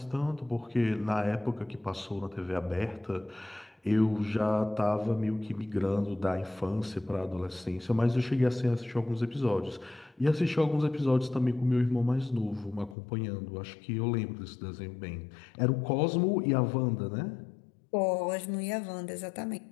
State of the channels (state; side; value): drops out; right; at 13.0 s